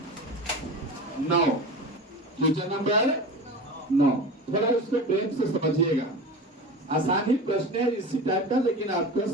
9, क्वेश्चन नंबर 9, थोड़ा इसको प्रेम से समझिएगा, आसानी प्रश्न है इसी टाइप का, लेकिन आपका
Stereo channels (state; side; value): normal; both; correlation 0.31